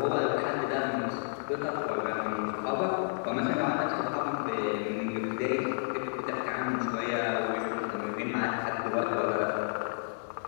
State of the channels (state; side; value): silent; right; 57 dB below the other